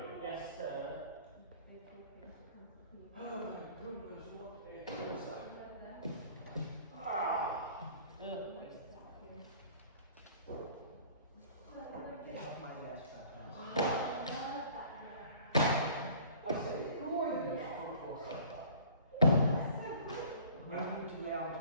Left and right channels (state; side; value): inverted; both; correlation -0.49